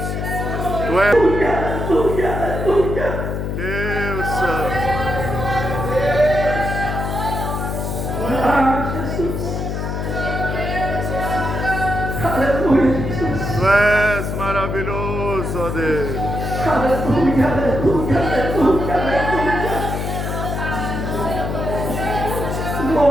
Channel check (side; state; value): left; noise; hum, 3 dB below the sound